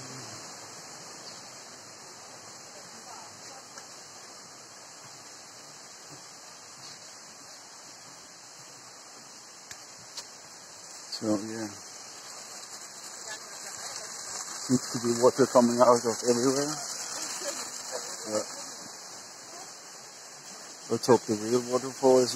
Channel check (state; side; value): identical; both; correlation 1.00